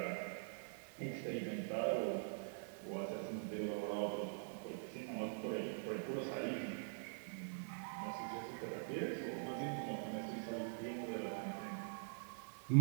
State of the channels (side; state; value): left; silent; digital silence